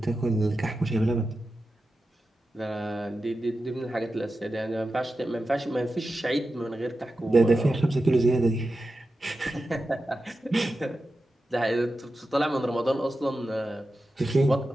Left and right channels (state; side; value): normal; both; correlation 0.92